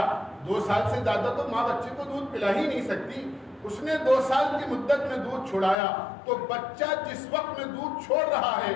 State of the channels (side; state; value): right; drops out; at 5.8 s